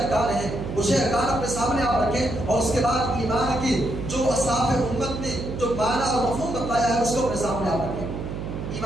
ہیں وہ 6 ارکان اپنے سامنے آپ رکھیں، اور اس کے بعد ایمان کی جو اسلاف امت نے جو معنی اور مفہوم بتایا ہے اس کو اپنے سامنے آپ رکھیں۔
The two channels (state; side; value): noise; right; hum, 6 dB below the sound